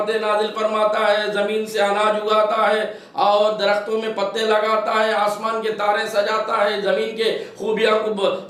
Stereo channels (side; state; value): both; identical; correlation 1.00